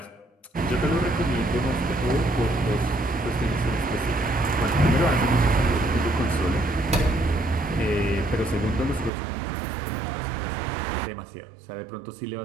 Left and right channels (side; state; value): left; drops out; at 9.1 s